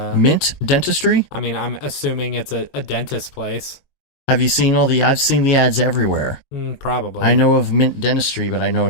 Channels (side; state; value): right; late; 22 ms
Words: Dentistry? I mean, I'm assuming it's a dentist place. Have you seen I've seen the ads everywhere. Probably. I know of Mint Dentistry, but I know